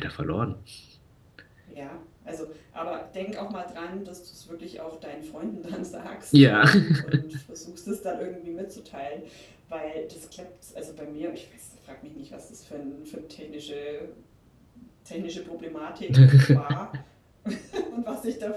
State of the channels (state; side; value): identical; both; correlation 1.00